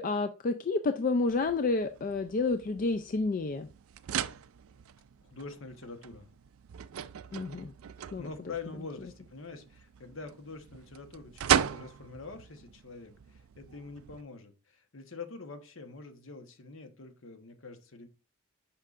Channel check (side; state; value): both; normal; correlation 0.14